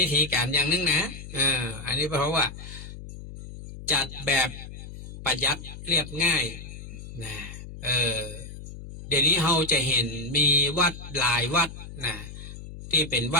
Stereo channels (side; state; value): left; noise; hum, 12 dB below the sound